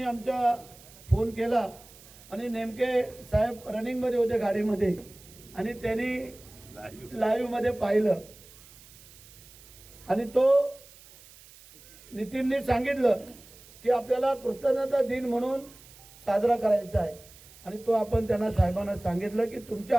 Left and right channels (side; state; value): right; noise; hiss, 22 dB below the sound